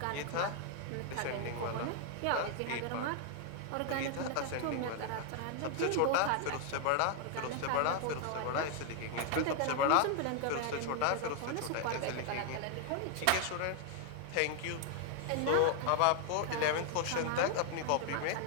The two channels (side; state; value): both; different; correlation 0.00